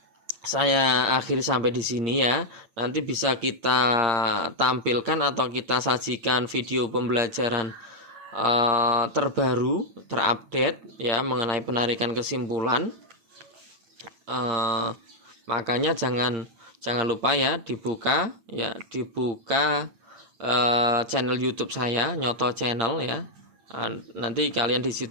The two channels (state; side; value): late; left; 8.9 ms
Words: saya akhiri sampai di sini ya. Nanti bisa kita tampilkan atau kita sajikan video pembelajaran terbaru, terupdate ya mengenai penarikan kesimpulan. Makanya jangan lupa ya dibuka channel YouTube saya, Nyoto Channel ya. Nanti kalian di